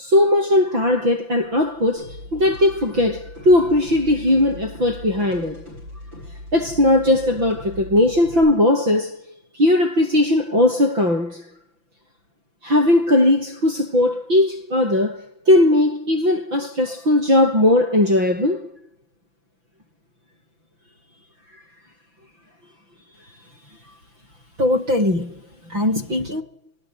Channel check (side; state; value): left; late; 5.9 ms